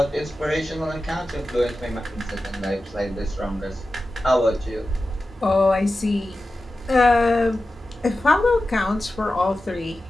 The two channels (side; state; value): both; normal; correlation 0.93